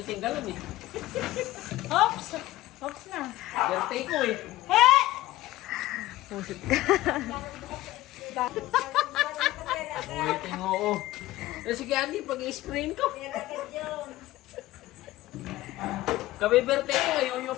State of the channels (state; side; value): quieter; right; 16.7 dB